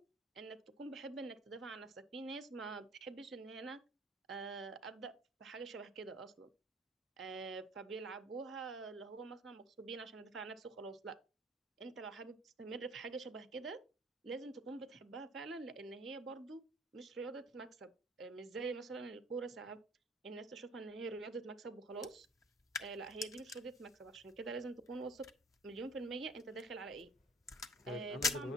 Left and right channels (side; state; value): both; normal; correlation 0.50